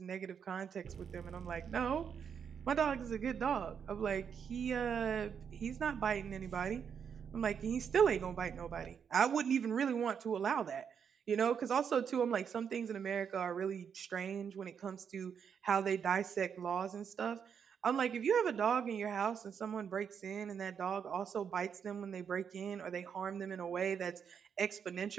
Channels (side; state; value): left; quieter; 7.3 dB